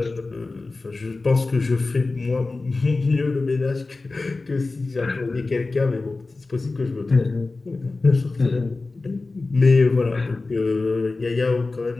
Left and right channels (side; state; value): right; quieter; 3.5 dB